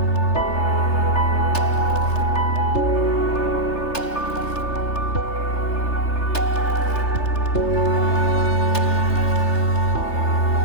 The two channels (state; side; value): late; right; 3.3 ms